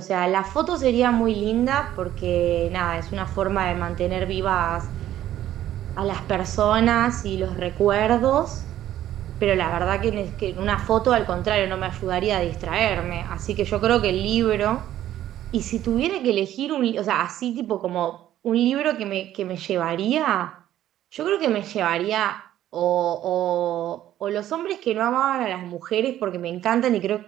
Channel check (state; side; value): quieter; left; 12.5 dB